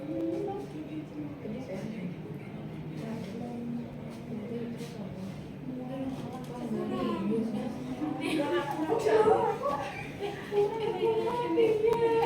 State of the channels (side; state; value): both; identical; correlation 1.00